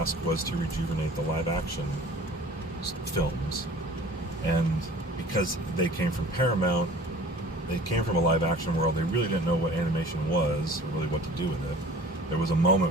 was to rejuvenate the live-action films. And because they came from Paramount, they came from a live-action world, they really didn't know what animation was, or really what to do with it. There was a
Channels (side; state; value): both; normal; correlation 0.46